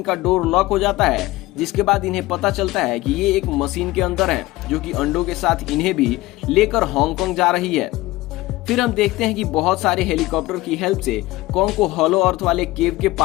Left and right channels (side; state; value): right; quieter; 18.7 dB